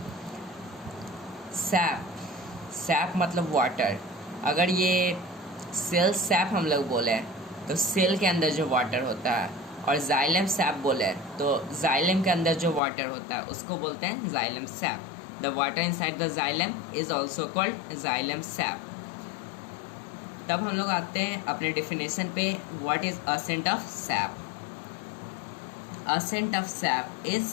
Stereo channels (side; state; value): right; drops out; at 12.8 s